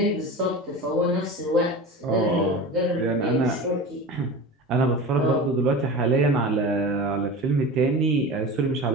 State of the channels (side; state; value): both; normal; correlation 0.31